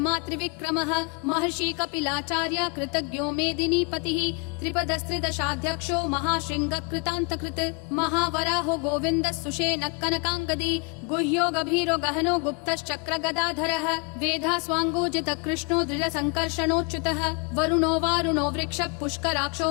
त्रिविक्रमः महर्षि कपिलाचार्य कृतज्ञो मेदिनीपतिः त्रिपदस्त्रिदशाध्यक्षो महाशृङ्ग कृतान्तकृत् महावराहो गोविन्दः सुषेणः कनकाङ्गदी गुह्यो गभीरो गहनो गुप्तश्चक्र गदाधरः वेधास्वाङ्गोजित कृष्णो दृढसङ्कर्षणोच्युतः वरुणो वारुणो वृक्ष पुष्कराक्षो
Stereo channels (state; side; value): quieter; right; 33.0 dB